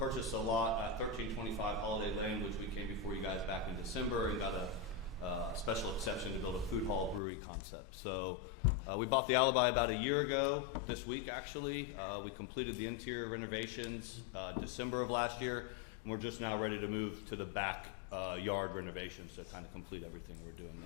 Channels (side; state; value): right; drops out; at 7.2 s